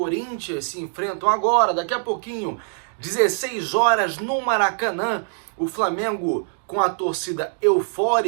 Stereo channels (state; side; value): silent; left; digital silence